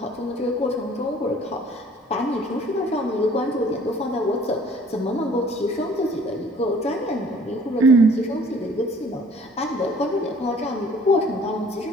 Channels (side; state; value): both; normal; correlation 0.54